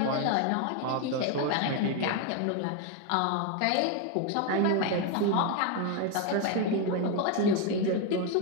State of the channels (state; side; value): different; both; correlation 0.02